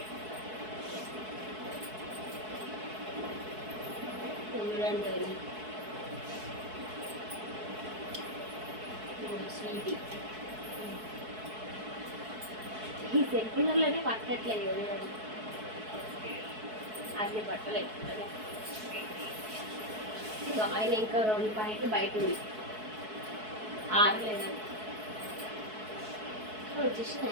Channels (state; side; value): late; left; 4.6 ms